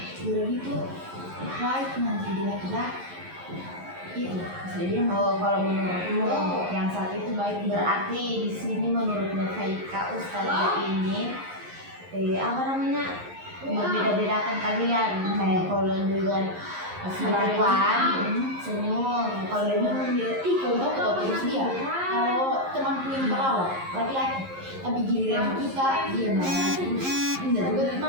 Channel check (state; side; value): late; left; 11 ms